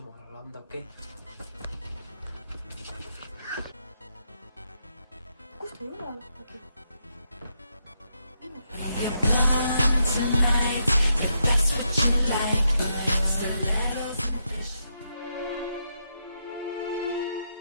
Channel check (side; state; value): both; inverted; correlation -0.81